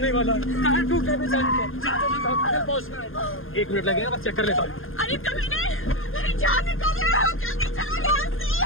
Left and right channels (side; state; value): right; late; 0.60 ms